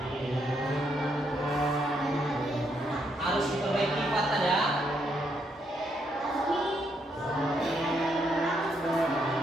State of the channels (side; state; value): both; normal; correlation 0.76